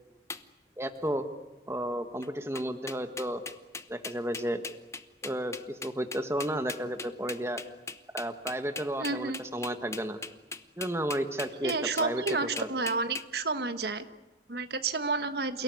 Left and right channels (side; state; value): both; normal; correlation 0.34